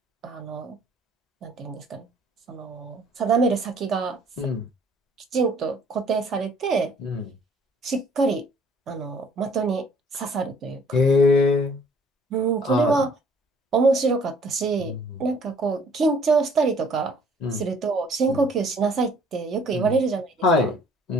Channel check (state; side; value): normal; both; correlation 0.59